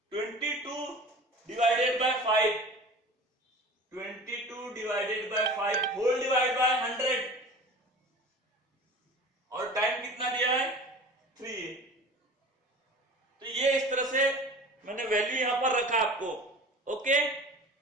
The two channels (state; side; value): normal; both; correlation 0.39